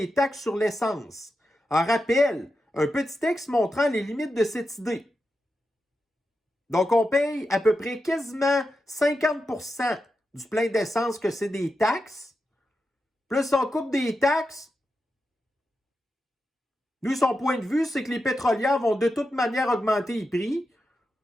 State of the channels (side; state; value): both; normal; correlation 0.89